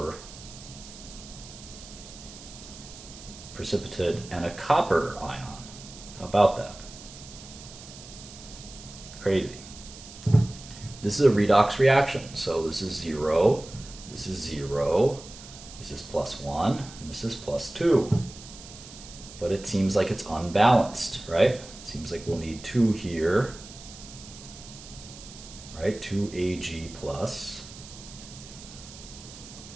precipitate and a copper ion. How about that? Crazy. This is a redox reaction. So this is 0, this is 0, this is plus 1, and this is plus 2. But it seems like it's unbalanced, right? It seems like we'll need 2 here, right? 2 Ag plus.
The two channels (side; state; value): right; noise; hiss, 16 dB below the sound